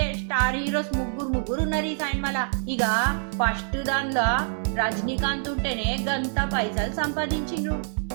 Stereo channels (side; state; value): left; silent; 61 dB below the other